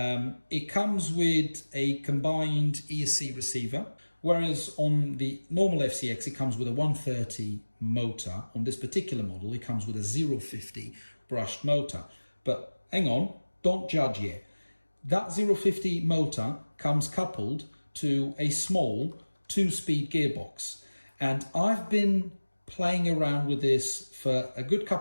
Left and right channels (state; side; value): inverted; both; correlation -1.00